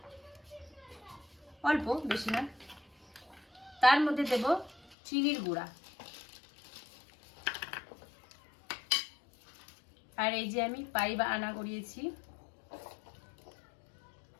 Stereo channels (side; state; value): right; drops out; at 5.0 s